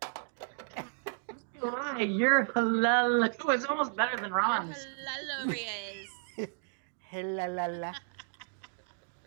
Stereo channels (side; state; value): left; silent; digital silence